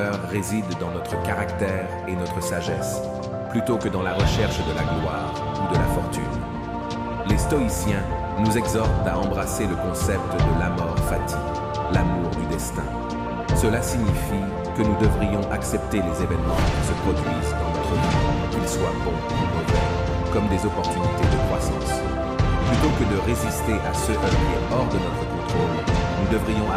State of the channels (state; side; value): identical; both; correlation 1.00